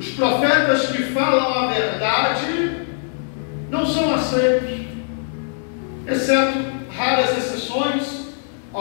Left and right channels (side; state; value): right; silent; digital silence